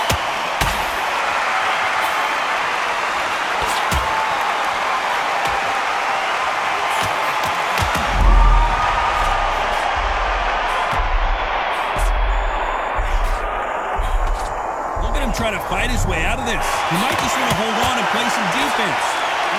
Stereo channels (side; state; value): both; identical; correlation 1.00